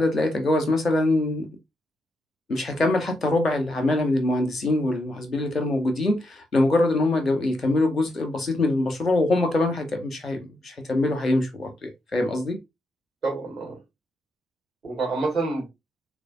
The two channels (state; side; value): normal; both; correlation 0.82